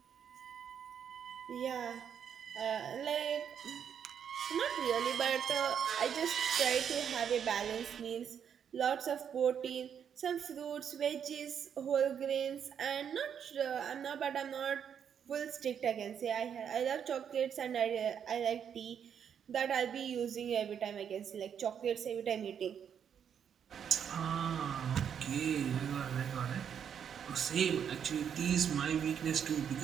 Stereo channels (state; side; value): quieter; left; 8.1 dB